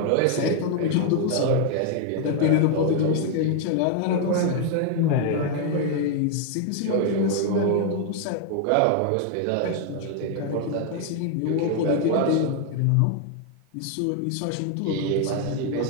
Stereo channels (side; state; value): both; different; correlation 0.00